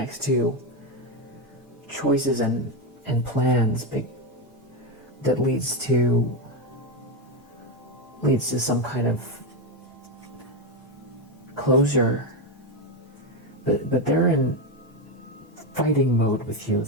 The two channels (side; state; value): both; normal; correlation 0.09